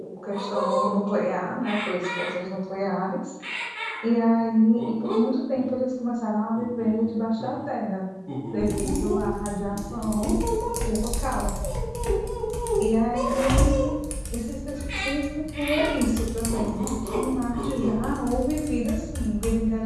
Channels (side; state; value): both; identical; correlation 1.00